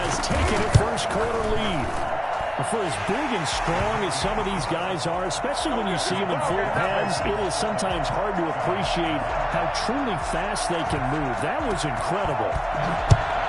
taken a first quarter lead. For as big and strong as some of these guys are, especially when you see them in full pads, it is sometimes hard to appreciate how truly fast they can move. That was incredible.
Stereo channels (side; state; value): both; identical; correlation 1.00